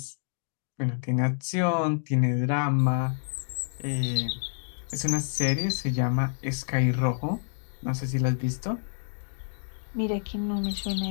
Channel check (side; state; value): right; silent; digital silence